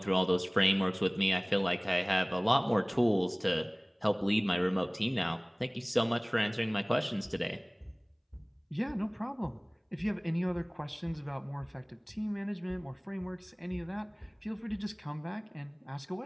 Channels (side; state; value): both; identical; correlation 1.00